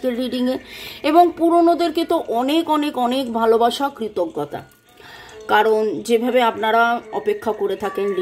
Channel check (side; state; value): both; identical; correlation 1.00